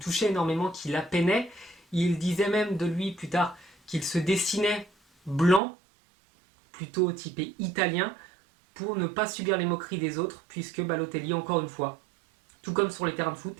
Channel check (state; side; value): drops out; left; at 5.6 s